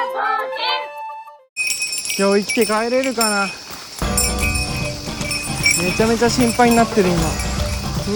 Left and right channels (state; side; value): identical; both; correlation 1.00